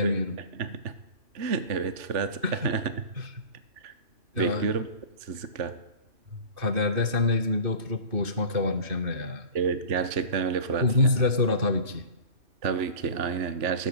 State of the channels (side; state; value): left; late; 2.5 ms